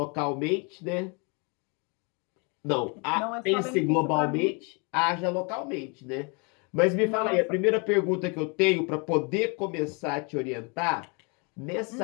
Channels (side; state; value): right; quieter; 32.5 dB